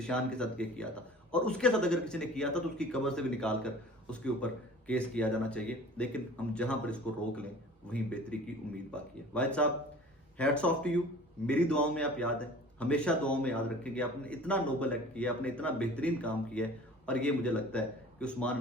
کے ساتھ یہ کیا تھا, اور اس کے ساتھ اگر کسی نے کیا تھا تو اس کی قبر سے بھی نکال کر اس کے اوپر کیس کیا جانا چاہیے. لیکن ہم جہاں پر اس کو روک لیں وہیں بہتری کی امید باقی ہے. واحد صاحب, ہیٹس آف ٹو یو. میری دعاؤں میں آپ یاد ہیں, ہمیشہ دعاؤں میں یاد رکھیں کہ آپ نے اتنا نوبل ایکٹ کیا, آپ نے اتنا بہترین کام کیا ہے. اور یہ مجھے لگتا ہے کہ عثمان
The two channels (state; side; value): normal; both; correlation 0.44